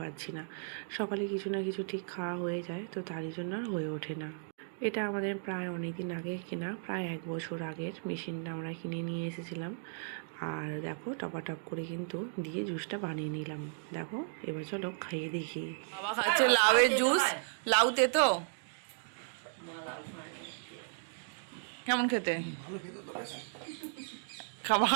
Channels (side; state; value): left; silent; digital silence